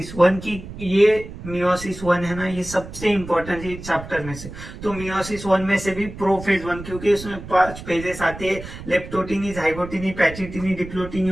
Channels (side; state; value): right; noise; rumble, 12 dB below the sound